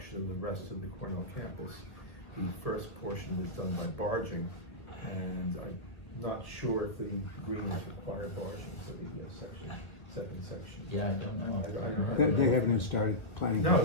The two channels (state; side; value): late; right; 2.0 ms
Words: of the rest of the Cornell campus. The first portion was done by barging, and I'm not sure if the greens require barging for the second section. Yeah, I don't know. I don't know. They haven't even started planning.